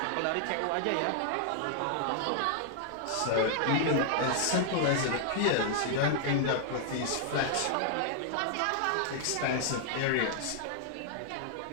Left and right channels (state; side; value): different; both; correlation -0.01